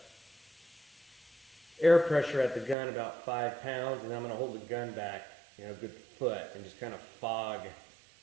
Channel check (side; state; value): left; drops out; at 2.8 s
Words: air pressure at the gun about 5 pounds, and I'm going to hold the gun back, a good foot, and just kind of fog